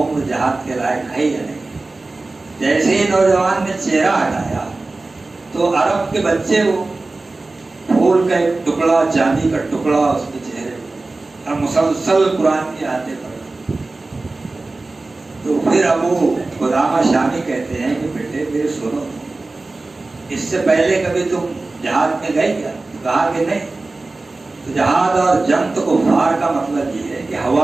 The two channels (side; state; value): left; quieter; 3.3 dB